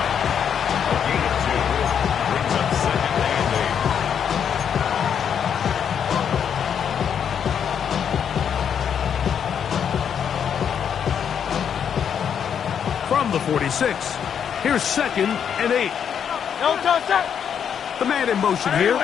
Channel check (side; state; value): right; quieter; 8.0 dB